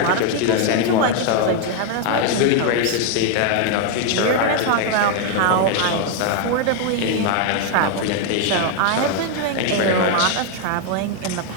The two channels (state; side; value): different; both; correlation 0.01